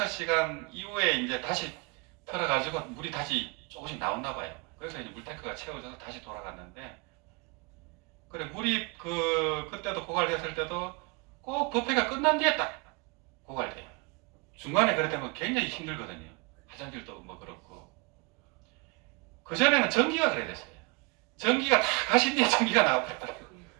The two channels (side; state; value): left; quieter; 29.2 dB